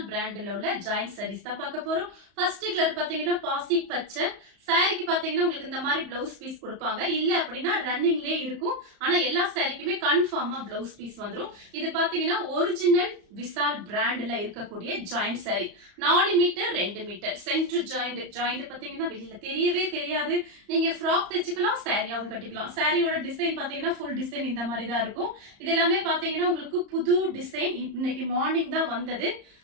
பிராண்ட்ல உள்ள ஜாயிண்ட் சாரீஸ் தான் பார்க்க போறோம். ஃபர்ஸ்ட் கலர் பாத்தீங்கன்னா பாசி பச்சை. சாரிக்கு பாத்தீங்கன்னா உங்களுக்கு இந்த மாதிரி பிளவுஸ் பீஸ் கொடுப்பாங்க. இல்ல அப்படின்னா ரன்னிங்லயே இருக்கும். ஆனா எல்லா சாரிக்குமே கன்ஃபார்மா பிளவுஸ் பீஸ் வந்துரும். இது பாத்தீங்கன்னா ஒரிஜினல் விசால் பிராண்ட்ல இருக்கக்கூடிய joint sari. 4 metre 2 metre centre joint பாத்தீங்கன்னா வெளியில தெரியவே தெரியாது. நீங்க ஃப்ராக் தைச்சுக்கலாம், சாரியாவும் கட்டிக்கலாம். சாரியோட டிசைன் பாத்தீங்கன்னா ஃபுல் டிசைன் இந்த மாதிரி தான் இருக்கும். இது எல்லாமே பாத்தீங்கன்னா உங்களுக்கு புது டிசைன் இன்னைக்கு மார்னிங் தான் வந்தது.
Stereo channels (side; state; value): left; late; 34 ms